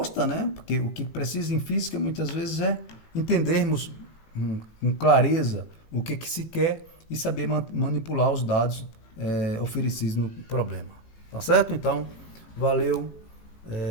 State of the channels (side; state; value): right; late; 18 ms